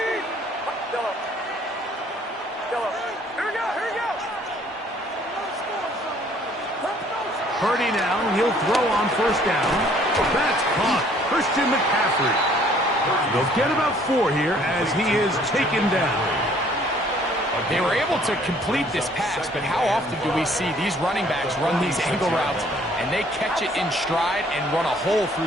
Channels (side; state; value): both; normal; correlation 0.59